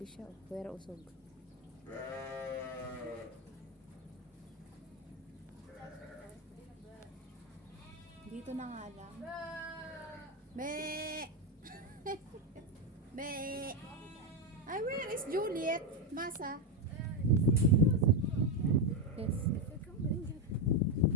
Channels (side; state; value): both; normal; correlation 0.07